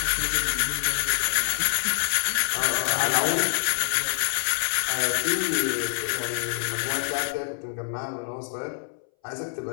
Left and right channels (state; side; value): silent; right; 60 dB below the other